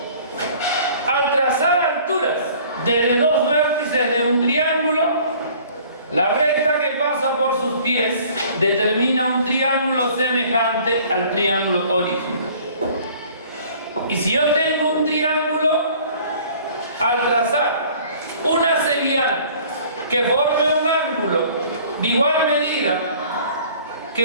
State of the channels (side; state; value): both; inverted; correlation -0.52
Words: Al trazar alturas desde dos vértices de un triángulo, la recta que pasa por sus pies determina un triángulo semejante al triángulo original. Y si yo tengo un triángulo, al trazar una cebiana que forme un ángulo de igual medida